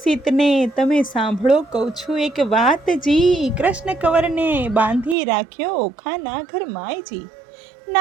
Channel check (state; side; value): drops out; left; at 5.2 s